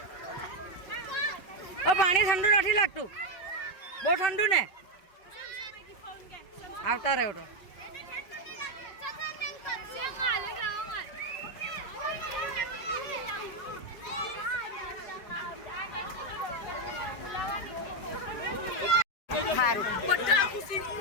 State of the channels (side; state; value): right; late; 5.2 ms